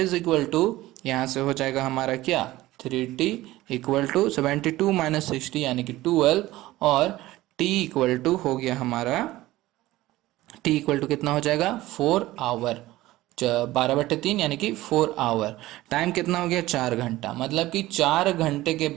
equal to यहाँ से हो जाएगा हमारा क्या, 3T इक्वल टू 72 माइनस 60 यानी कि 12, और T इक्वल टू हो गया हमारा, T इक्वल टू कितना हो जाएगा 4 आवर, 12/3 यानी कि 4 आवर। टाइम कितना हो गया 4 घंटा, मतलब कि 4 घंटे के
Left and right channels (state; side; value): quieter; left; 17.1 dB